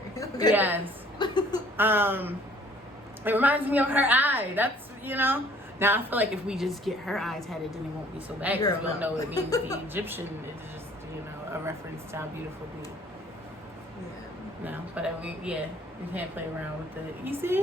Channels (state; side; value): normal; both; correlation 0.56